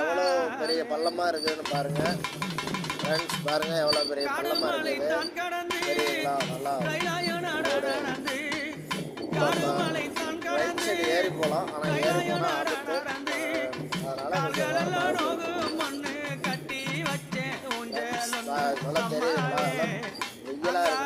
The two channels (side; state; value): both; identical; correlation 1.00